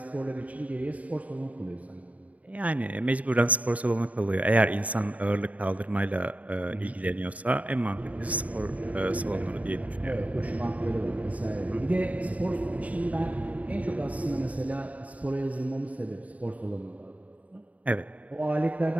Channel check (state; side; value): late; left; 0.070 ms